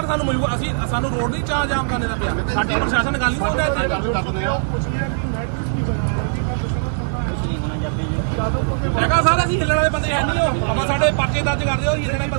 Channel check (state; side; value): silent; left; digital silence